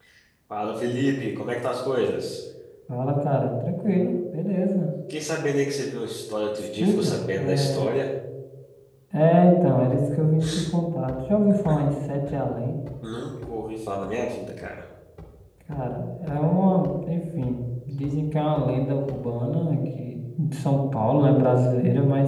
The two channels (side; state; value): both; identical; correlation 1.00